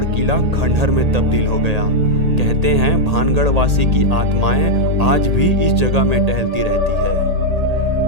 किला खंडहर में तब्दील हो गया। कहते हैं भानगढ़ वासी की आत्माएं आज भी इस जगह में टहलती रहती है।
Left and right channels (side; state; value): left; late; 1.8 ms